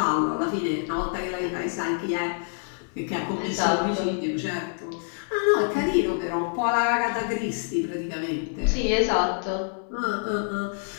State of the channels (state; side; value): silent; right; 61 dB below the other